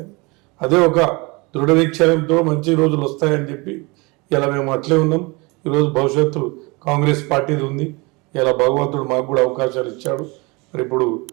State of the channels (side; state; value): left; quieter; 26.6 dB